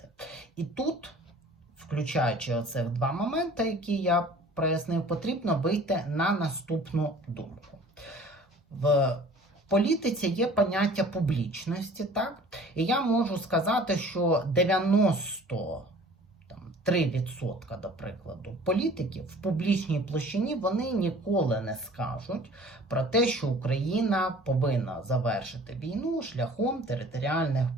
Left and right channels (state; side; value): normal; both; correlation 0.48